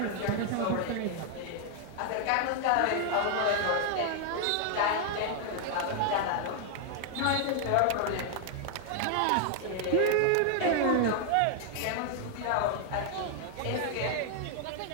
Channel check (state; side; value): different; both; correlation 0.00